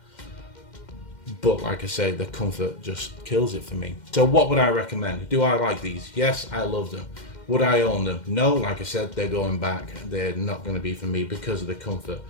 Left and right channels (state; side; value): late; right; 2.1 ms